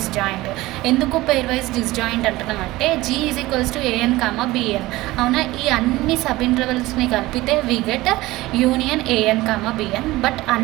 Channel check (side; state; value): left; quieter; 18.7 dB